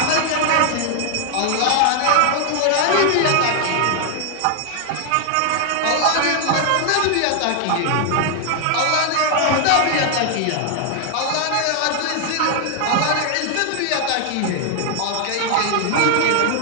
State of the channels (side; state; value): both; different; correlation 0.00